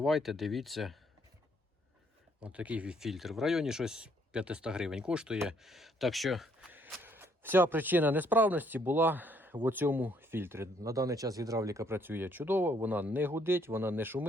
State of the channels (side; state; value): both; normal; correlation 0.67